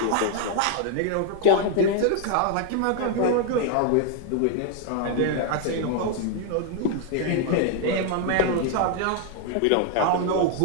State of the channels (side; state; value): both; different; correlation 0.00